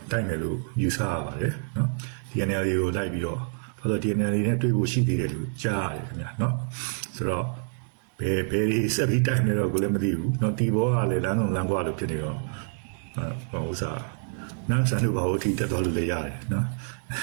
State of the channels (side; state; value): left; silent; 60 dB below the other